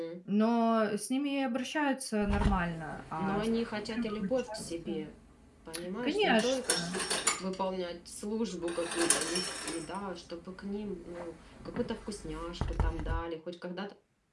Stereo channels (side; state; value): both; identical; correlation 1.00